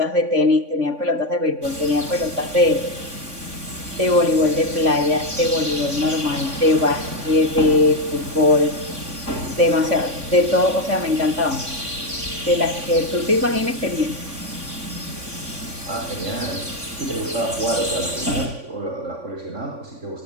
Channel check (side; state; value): left; late; 3.5 ms